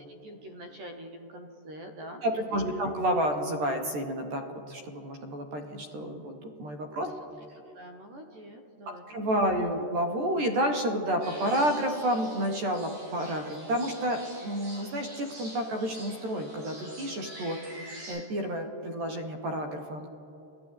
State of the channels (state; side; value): late; left; 14 ms